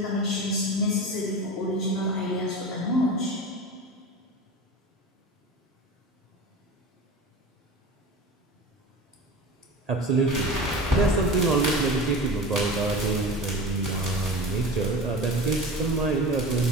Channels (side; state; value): both; normal; correlation 0.32